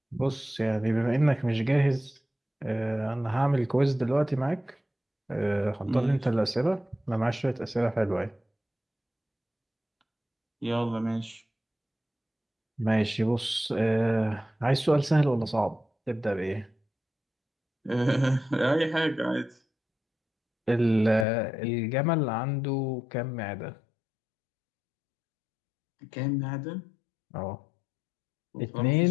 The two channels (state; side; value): drops out; right; at 21.2 s